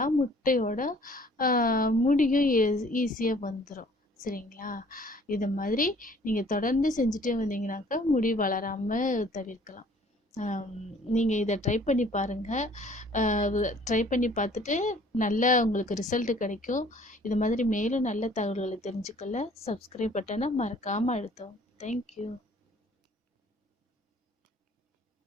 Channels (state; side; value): normal; both; correlation 0.55